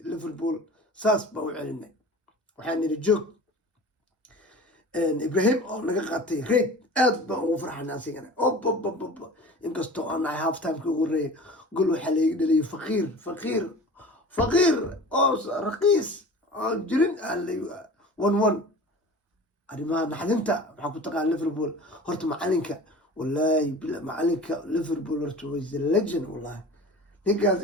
liverpool saas baa u celinay waxaan nidhi joog ibrahim oo naga qaatay reed aad baan ugu farxana asigana ob inkastoo aan nahay half timeka ugu horeeyay gol waxaa layga dhaliyay faqiir oo raqiis oon jirin one arrimaha naxdinta waxaa ku taqaan liverpool horta macalinka wallaahi macalinka liverpool horta was the legend wallahi ninkaas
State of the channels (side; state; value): both; normal; correlation 0.39